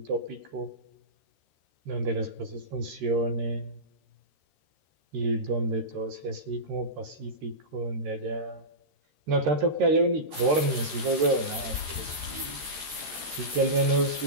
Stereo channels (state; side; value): late; left; 13 ms